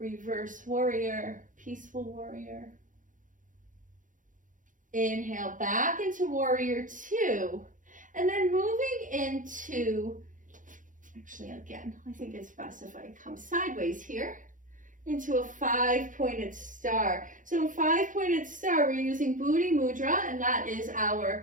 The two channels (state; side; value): late; left; 0.38 ms